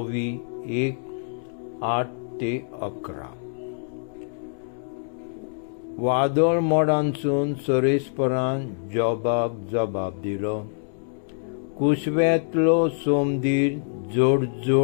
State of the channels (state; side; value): silent; right; digital silence